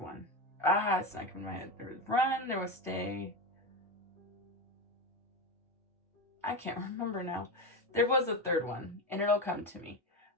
It's not coming to my head. There was run, there was stay. I can't remember now. There was a third one, and it'll come to me.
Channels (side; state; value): both; normal; correlation 0.17